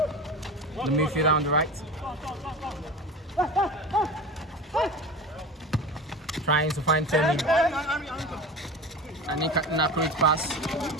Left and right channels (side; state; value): both; normal; correlation 0.31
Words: the midfielder on the right. Trying to find Femi. And an accurate pass.